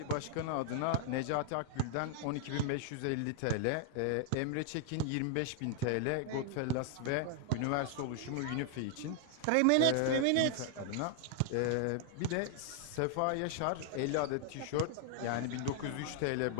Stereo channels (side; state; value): both; different; correlation 0.00